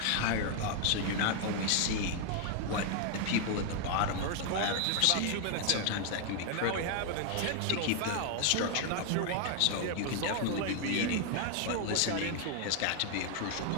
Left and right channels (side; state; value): both; different; correlation 0.00